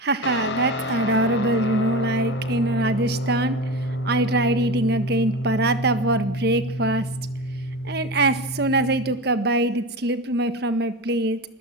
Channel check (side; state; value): both; normal; correlation 0.26